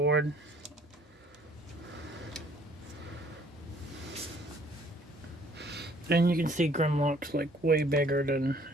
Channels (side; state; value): both; normal; correlation 0.58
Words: And you can see Grimlock's like way bigger than